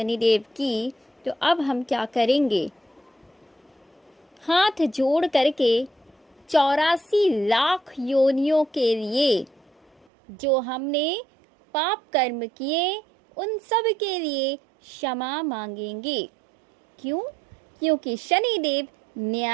की, तो अब हम क्या करेंगे। हाथ जोड़ करके 84 लाख योनियों के लिए जो हमने पाप कर्म किए उन सब के लिए क्षमा मांगेंगे। क्यों? क्योंकि शनिदेव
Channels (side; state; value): left; drops out; at 10.1 s